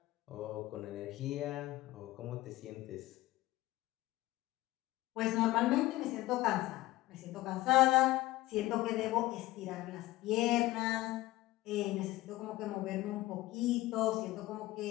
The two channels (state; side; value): quieter; right; 17.5 dB